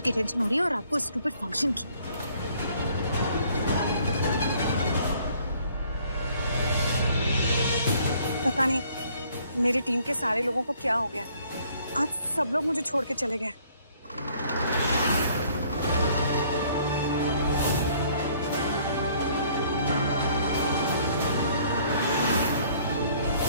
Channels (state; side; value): inverted; both; correlation -0.61